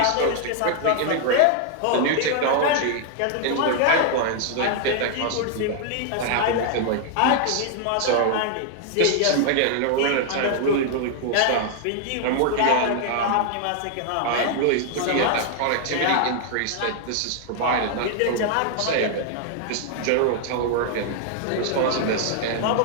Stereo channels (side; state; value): both; different; correlation 0.00